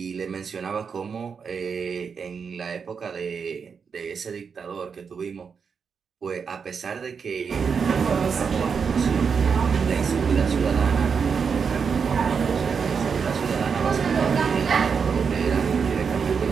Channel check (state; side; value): quieter; left; 6.0 dB